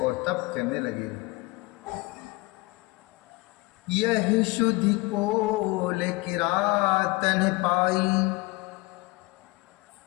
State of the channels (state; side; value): quieter; right; 23.2 dB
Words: तप करने लगे। यही शुद्धि कोल किरातन पाई,